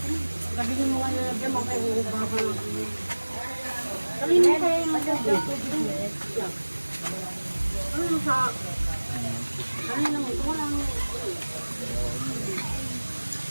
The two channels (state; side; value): inverted; both; correlation -1.00